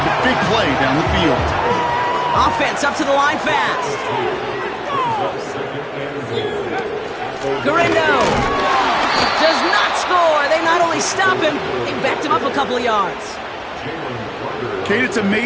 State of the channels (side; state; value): both; identical; correlation 1.00